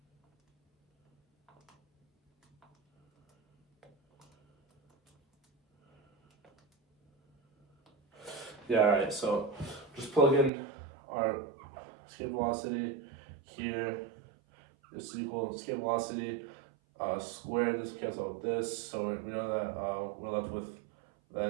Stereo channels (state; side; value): drops out; left; at 10.5 s